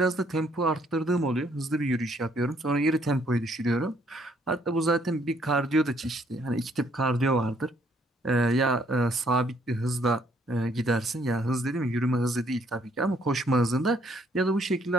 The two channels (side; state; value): both; normal; correlation 0.67